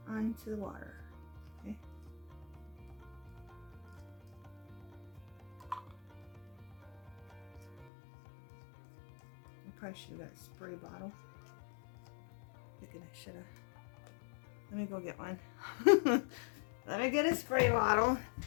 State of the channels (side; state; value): right; drops out; at 7.9 s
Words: onto the water. Okay. I probably should have got a spray bottle. Thinking I should have. Let me go get one. Let me get a spray bottle.